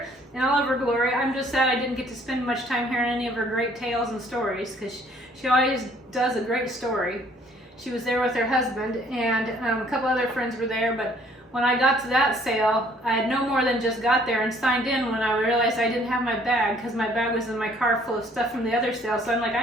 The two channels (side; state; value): both; normal; correlation 0.60